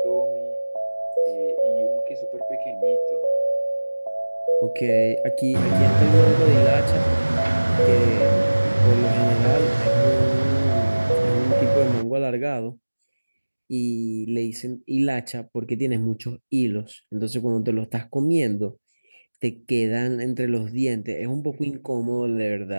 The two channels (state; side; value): inverted; both; correlation -1.00